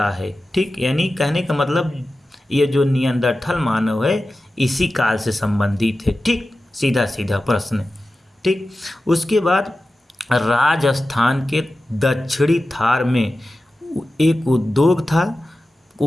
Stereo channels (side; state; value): both; normal; correlation 0.94